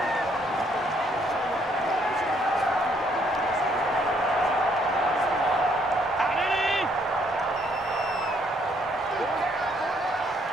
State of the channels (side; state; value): both; normal; correlation 0.68